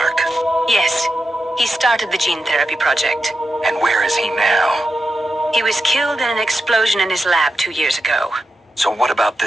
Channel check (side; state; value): both; normal; correlation 0.89